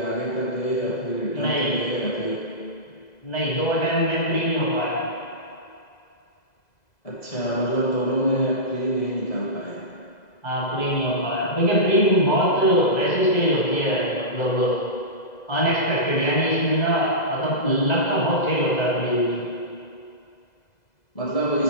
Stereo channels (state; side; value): late; right; 2.0 ms